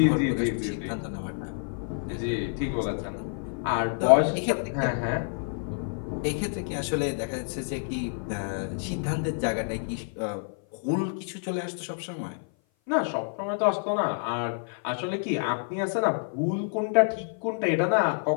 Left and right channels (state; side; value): silent; right; 56 dB below the other